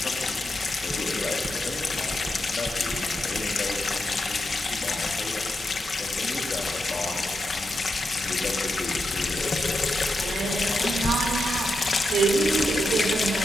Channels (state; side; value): normal; both; correlation 0.86